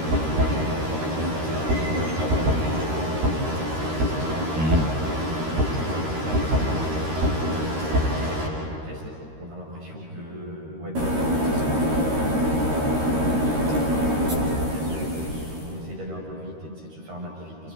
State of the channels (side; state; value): left; late; 13 ms